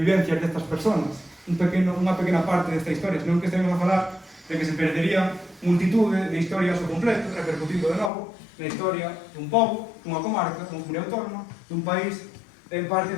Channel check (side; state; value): right; drops out; at 8.1 s